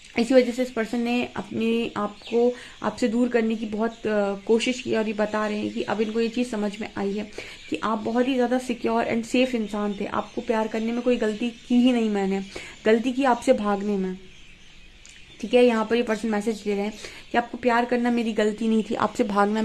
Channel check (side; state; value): both; identical; correlation 1.00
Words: इसी वजह से इस पर्सन ने अपने आप को आपसे दूर करने की बहुत कोशिश की, और ये बता रहे हैं कि अब इनको ये चीज़ समझ में आई है कि आप बहुत ही ज़्यादा सिक्योर एंड सेफ इंसान थे। आपको प्यार करने में कोई गलती की ही नहीं, मैंने गलती की आपसे भागने में। ठीक है, यहाँ पर ये पर्सन मैसेज दे रहे हैं कि आपको प्यार करना मेरी गलती नहीं थी, आपसे भागना